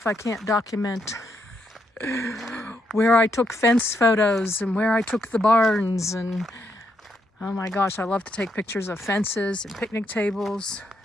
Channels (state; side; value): normal; both; correlation 0.78